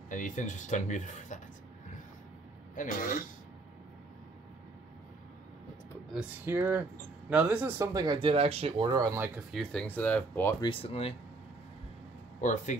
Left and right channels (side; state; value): left; quieter; 3.4 dB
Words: And Ethan's just unmuted for that. Anyways, let's put this here. Now, this is something I did actually order on like a few things that I've bought recently. Or